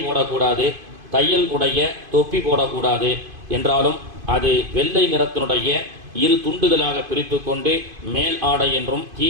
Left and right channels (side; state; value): left; late; 2.5 ms